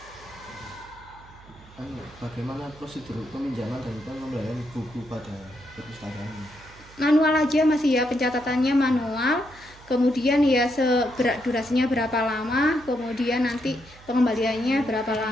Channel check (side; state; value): right; noise; hum, 22 dB below the sound